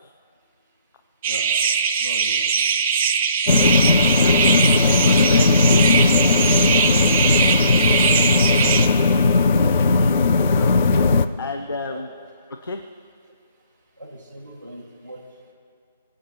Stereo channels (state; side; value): inverted; both; correlation -0.62